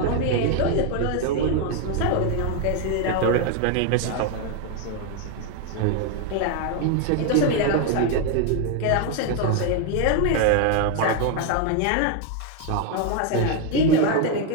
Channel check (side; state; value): both; different; correlation 0.01